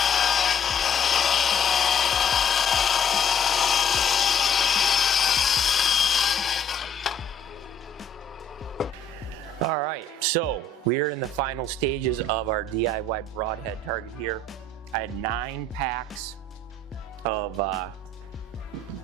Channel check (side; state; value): right; quieter; 3.4 dB